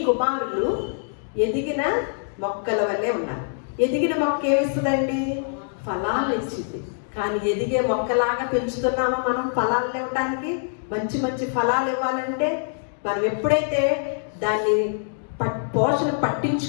కుమారులు ఎదిగిన మొక్కల వల్లే ఉన్నారు. ఎదిగిన మొక్క ఏమిస్తుందండి? ఫలాలు ఇచ్చింది. కానీ ఎదిగే మొక్కలాగా పెంచుతున్నామా మనం ఫలాలు ఇవ్వడానికి? మంచి మంచి ఫలాలు ఇవ్వాలంటే మనం ఎప్పుడైతే దాన్ని పోషణ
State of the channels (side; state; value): right; silent; digital silence